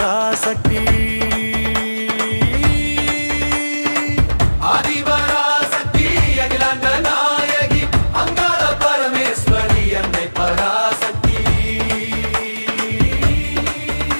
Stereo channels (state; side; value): inverted; both; correlation -1.00